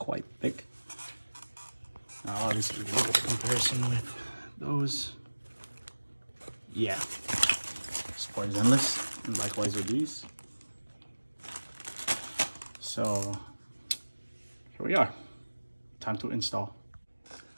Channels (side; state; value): both; inverted; correlation -1.00